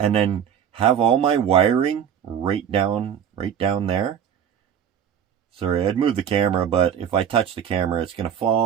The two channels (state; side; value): quieter; left; 8.7 dB